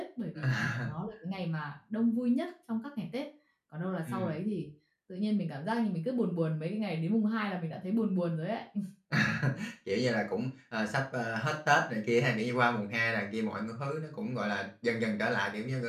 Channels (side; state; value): both; identical; correlation 1.00